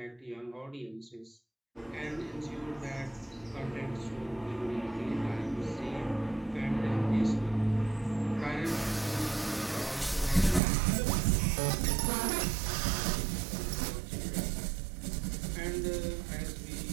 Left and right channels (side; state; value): left; drops out; at 10.6 s